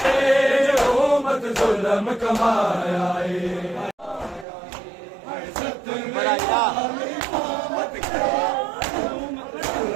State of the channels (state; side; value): drops out; left; at 4.5 s